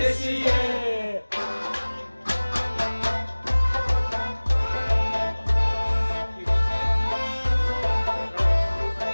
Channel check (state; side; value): inverted; both; correlation -1.00